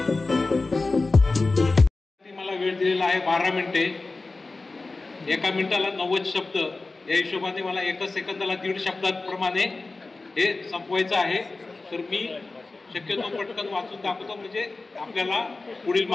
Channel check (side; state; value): right; quieter; 3.5 dB